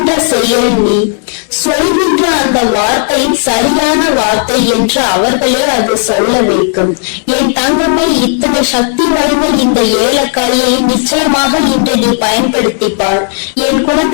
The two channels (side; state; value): right; silent; 56 dB below the other